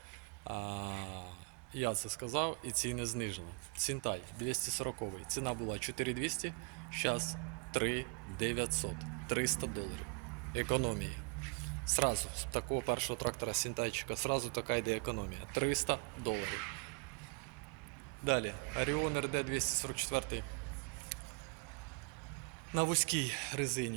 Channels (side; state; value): left; quieter; 35.2 dB